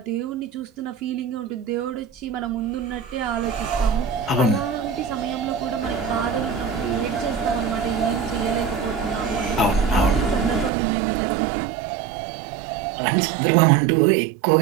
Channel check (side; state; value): left; drops out; at 10.7 s